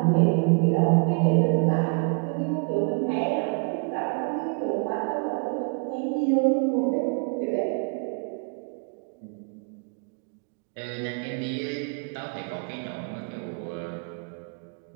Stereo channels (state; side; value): quieter; left; 37.3 dB